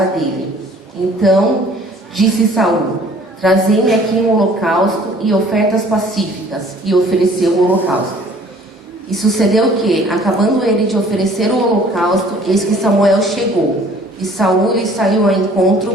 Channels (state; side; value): normal; both; correlation 0.54